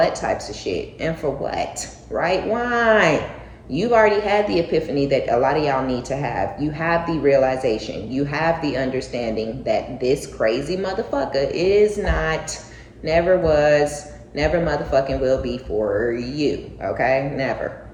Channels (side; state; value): both; identical; correlation 1.00